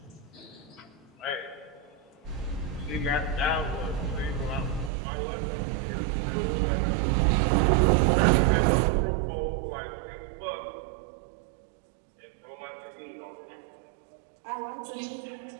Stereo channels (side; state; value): left; drops out; at 4.9 s